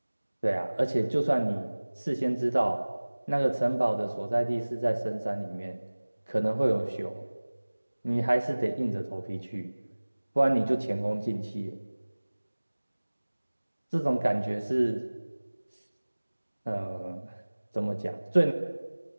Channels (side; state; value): both; inverted; correlation -1.00